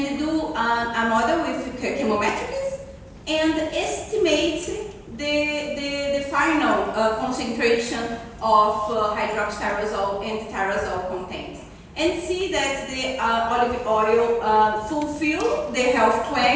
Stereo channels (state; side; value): identical; both; correlation 1.00